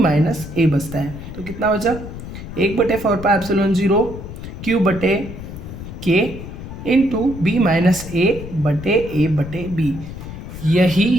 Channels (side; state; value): left; noise; rumble, 11 dB below the sound